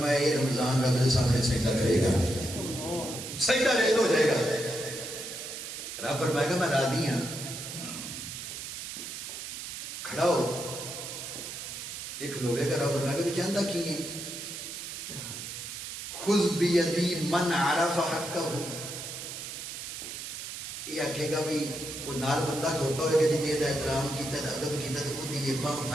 یہ رمضان رب کے سامنے سجدہ کرے گا، سجدہ ریز ہو جائے گا۔ رب فرمائے گا میں راضی ہوں، کھڑا ہو، ایک کھلوے گا۔ رب فرمائے گا کہ چاہتا کی ہے، خُذْ بِيَدِي مَنْ عَرَفَ حَقَّهُ، یہ آکھے گا بھی وہ نال بندہ کھوتا ہوئے گا جنہیں دا احترام کیتا ہے، ادب کیتا ہے، تو وہ دیئے باں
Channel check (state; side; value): noise; right; hiss, 8 dB below the sound